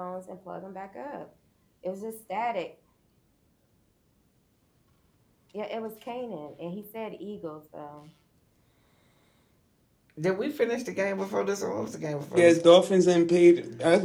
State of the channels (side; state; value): both; identical; correlation 1.00